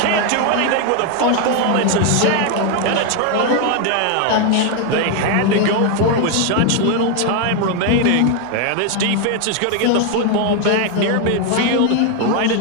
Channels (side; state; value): both; different; correlation 0.01